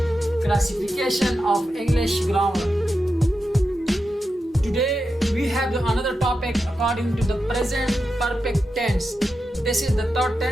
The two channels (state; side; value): normal; both; correlation 0.89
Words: Classification of English Grammar. Today we have another topic according to the present perfect tense. This is the third